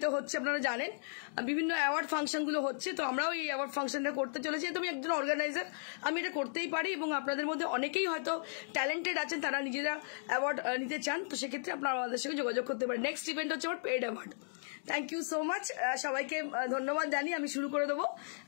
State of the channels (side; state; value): right; silent; digital silence